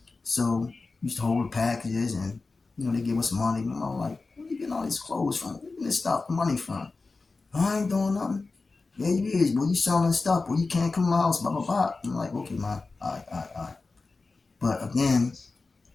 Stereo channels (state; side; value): quieter; right; 3.8 dB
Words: So we used to hold the packages, and they give us money. And I'm like, where you getting all these clothes from? Where you getting this stuff, money from? I ain't doing nothing. Yeah, you is. Well, you selling stuff. Well, you can't come to my house. Blah blah blah. I'm like, okay, man. All right, all right, all right. But again,